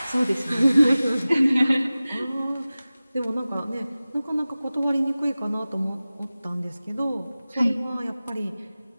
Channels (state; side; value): inverted; both; correlation -0.97